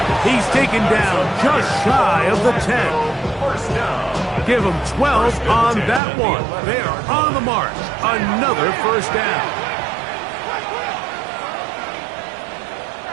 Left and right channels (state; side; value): drops out; left; at 6.0 s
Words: He's taken down just shy of the 10. 1st down. Give them 12 on that one. They are on the march. Another 1st down.